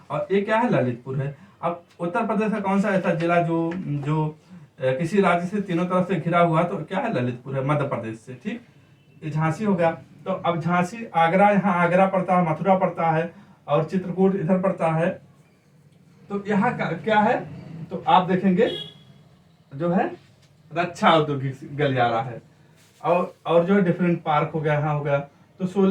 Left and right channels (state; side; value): identical; both; correlation 1.00